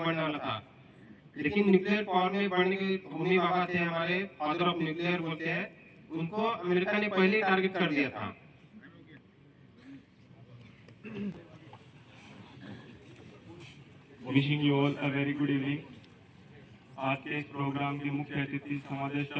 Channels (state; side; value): identical; both; correlation 1.00